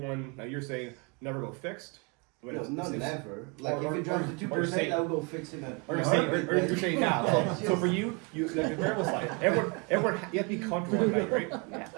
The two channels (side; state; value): left; quieter; 31.9 dB